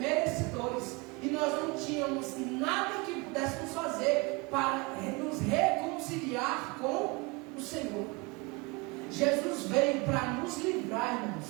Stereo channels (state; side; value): quieter; left; 27.4 dB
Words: e nós não tínhamos nada que pudéssemos fazer para nos reconciliar com o Senhor. Jesus veio para nos